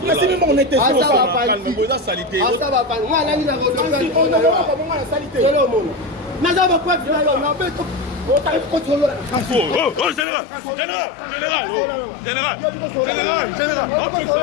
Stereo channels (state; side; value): drops out; right; at 10.2 s